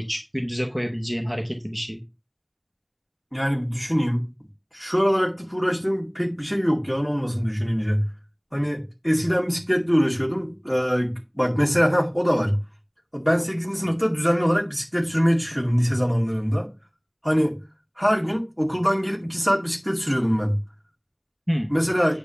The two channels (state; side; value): identical; both; correlation 1.00